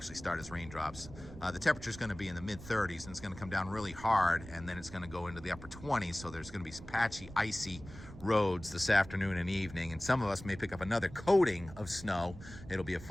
start as raindrops. The temperature is going to be in the mid-30s, and it's going to come down really hard, and then it's going to go into the upper 20s. So there's going to be some patchy, icy roads this afternoon and evening, and some of us may pick up another coating of snow. It'll be a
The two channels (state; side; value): noise; right; rumble, 15 dB below the sound